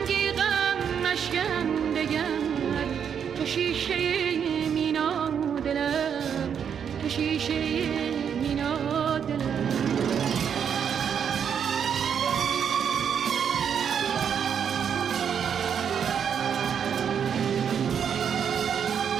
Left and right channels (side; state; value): left; quieter; 7.8 dB